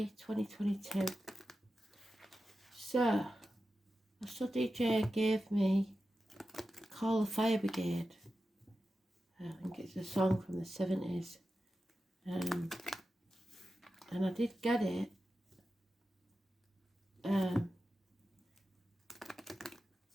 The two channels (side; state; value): both; normal; correlation 0.92